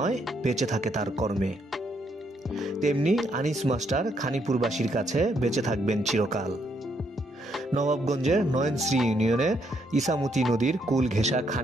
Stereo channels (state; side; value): normal; both; correlation 0.74